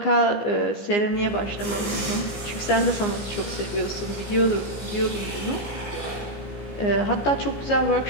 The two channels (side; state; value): right; late; 15 ms